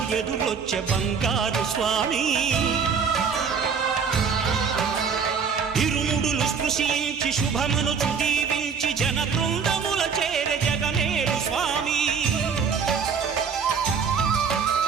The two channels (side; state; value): left; quieter; 6.1 dB